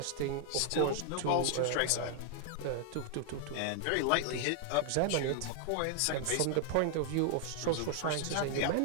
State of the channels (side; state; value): both; different; correlation 0.00